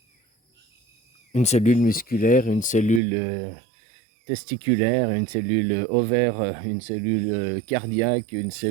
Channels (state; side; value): drops out; left; at 3.0 s